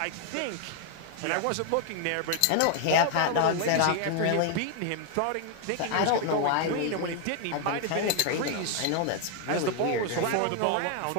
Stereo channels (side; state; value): both; different; correlation 0.00